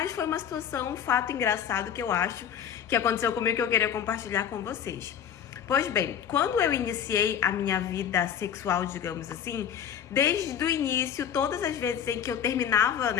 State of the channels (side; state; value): right; quieter; 8.9 dB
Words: foi uma situação, um fato engraçado que eu acho que aconteceu comigo que eu queria compartilhar com vocês. Pois bem, quando eu iniciei a minha vida sexual, digamos assim, desde o início, todas as vezes em que eu terminava,